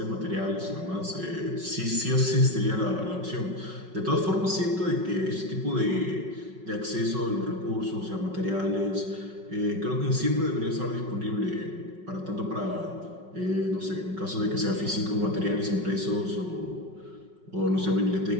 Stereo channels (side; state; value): left; late; 5.4 ms